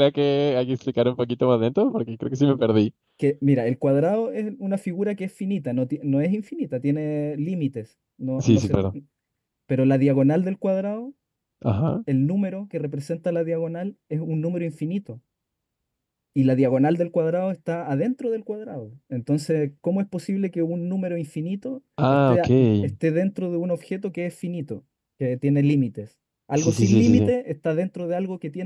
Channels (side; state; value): both; identical; correlation 1.00